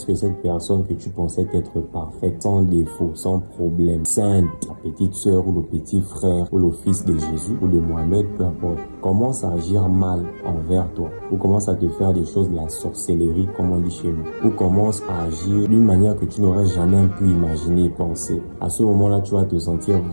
cette personne que tu pensais être parfaite, sans défaut, sans problème, sainte, la petite sœur ou le petit frère ou le fils de Jésus ou de Mohamed, peu importe, commence à agir mal envers toi, ou commence à te faire des choses de la sorcellerie comme on dit chez nous, ou commence à agir d'une manière que tu n'aurais jamais pu imaginer, penser. À ce moment-là, tu vas te sentir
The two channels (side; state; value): both; inverted; correlation -1.00